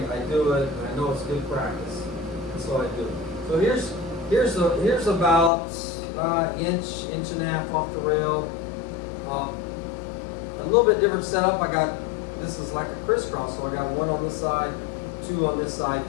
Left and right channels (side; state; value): right; drops out; at 5.5 s